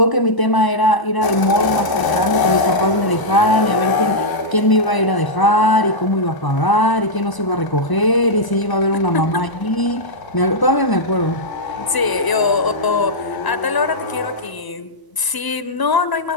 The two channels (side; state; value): right; late; 1.0 ms